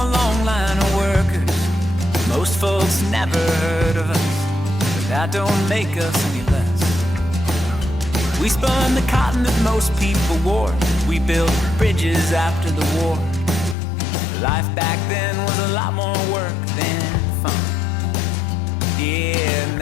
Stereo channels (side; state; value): right; drops out; at 13.8 s